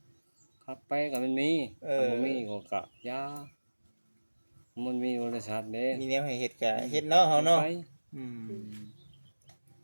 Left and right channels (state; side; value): inverted; both; correlation -1.00